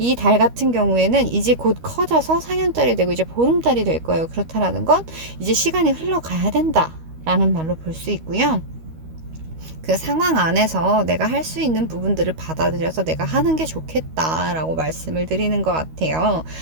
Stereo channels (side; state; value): left; late; 13 ms